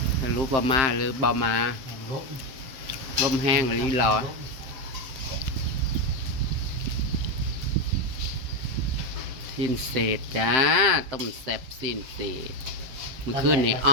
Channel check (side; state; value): left; late; 7.7 ms